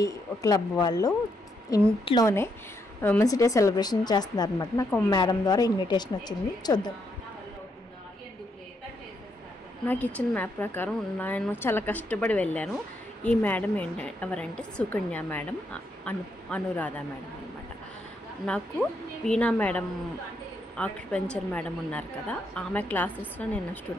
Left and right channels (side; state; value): both; normal; correlation 0.77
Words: క్లబ్ వాళ్ళు ఇంట్లోనే ఉమెన్స్ డే సెలబ్రేషన్ చేస్తున్నారు అనమాట. నాకు మేడం ద్వారా ఇన్విటేషన్ వచ్చింది. చూద్దాం. నాకు ఇచ్చిన మ్యాప్ ప్రకారం నేను చాలా కష్టపడి వెళ్ళాను. ఈ మేడం ఎవరంటే సుకన్య మేడం, అనురాధ మేడం అనమాట. నాకు వీణా మేడం, ఆక్యుపెంచర్ మేడం ఉన్నారు కదా, ఆమె క్లాసెస్లో నేను